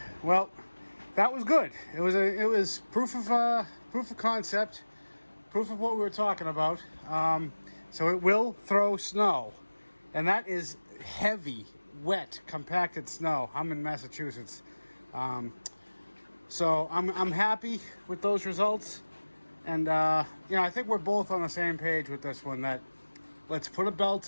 well, that was good. It was proof of concept, proof of what we were talking about. So it will throw snow, and that is heavy, wet, compacted snow. I'm in Massachusetts, so I'm happy with those results, and I think we're both on the same page with this one. That let's put a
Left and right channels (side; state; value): both; inverted; correlation -1.00